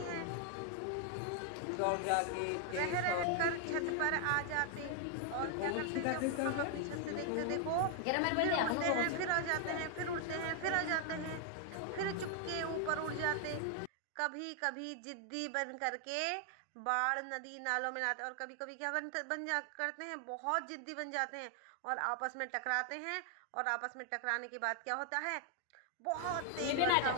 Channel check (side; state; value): both; different; correlation 0.00